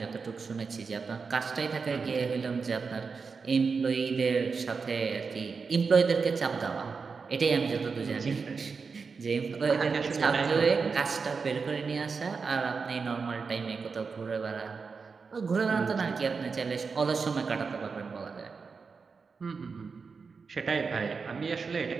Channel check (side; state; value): left; quieter; 5.1 dB